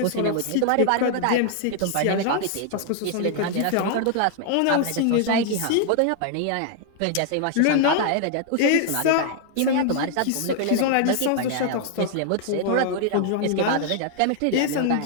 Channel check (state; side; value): different; both; correlation 0.00